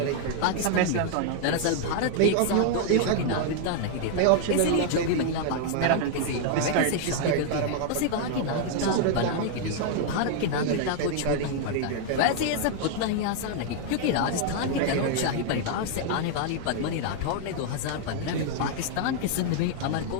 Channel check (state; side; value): different; both; correlation 0.00